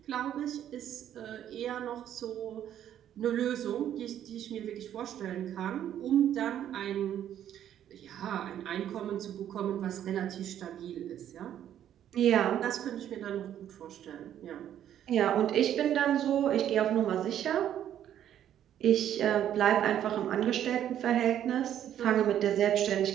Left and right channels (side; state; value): left; quieter; 10.6 dB